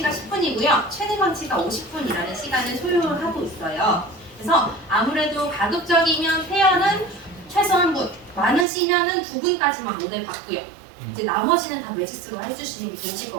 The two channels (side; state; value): left; drops out; at 8.7 s